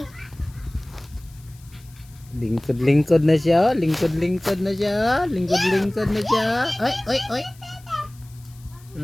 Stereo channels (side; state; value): left; noise; hiss, 27 dB below the sound